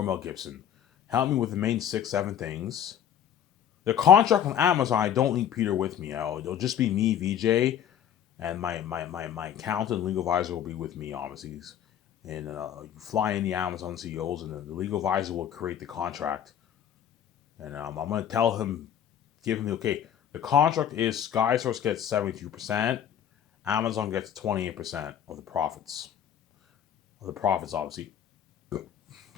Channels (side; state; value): right; quieter; 9.5 dB